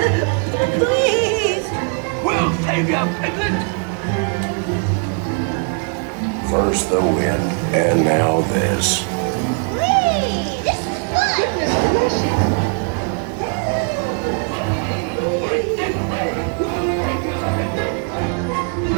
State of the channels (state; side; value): quieter; left; 38.9 dB